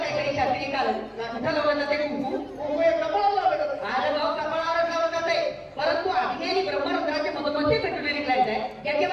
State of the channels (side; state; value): both; identical; correlation 1.00